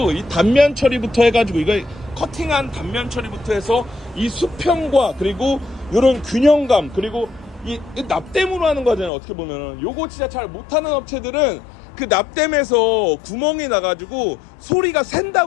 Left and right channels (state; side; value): drops out; right; at 9.1 s